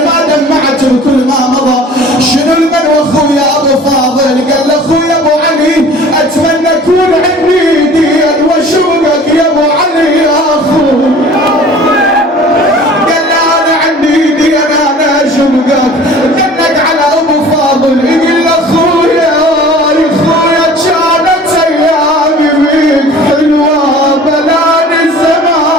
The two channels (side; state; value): both; normal; correlation 0.46